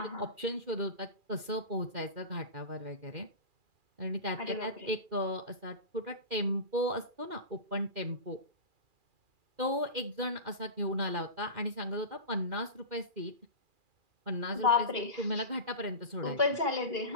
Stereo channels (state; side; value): late; left; 2.4 ms